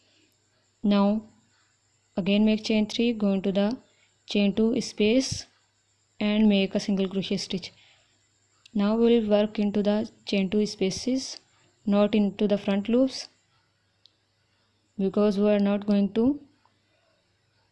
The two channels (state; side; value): identical; both; correlation 1.00